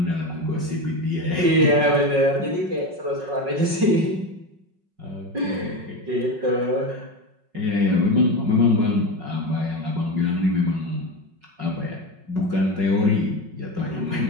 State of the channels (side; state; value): left; late; 5.4 ms